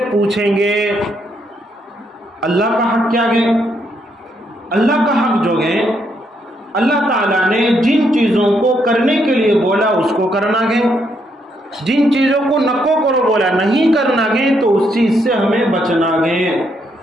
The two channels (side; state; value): both; normal; correlation 0.75